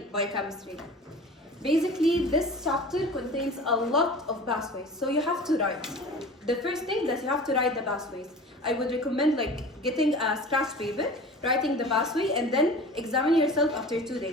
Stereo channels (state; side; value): normal; both; correlation 0.39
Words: biochemistry. Basically, this chapter contains a lot of pathways, so you have to write. The first thing that you have to write the pathways. I would recommend getting a scratch paper, writing the pathway, and then examine yourself after 2